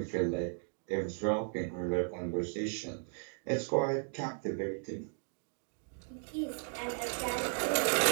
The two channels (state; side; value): silent; left; 54 dB below the other